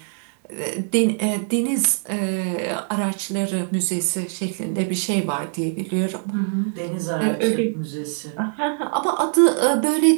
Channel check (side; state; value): left; silent; digital silence